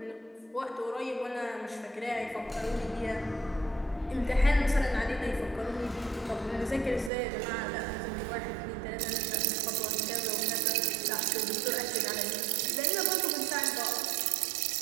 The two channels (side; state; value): left; drops out; at 7.1 s